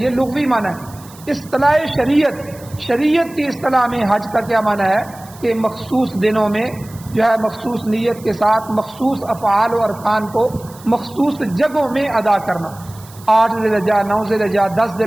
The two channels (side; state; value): right; noise; hiss, 22 dB below the sound